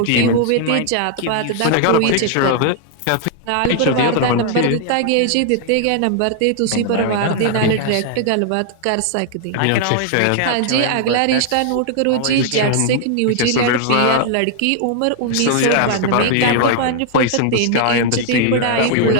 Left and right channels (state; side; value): different; both; correlation 0.00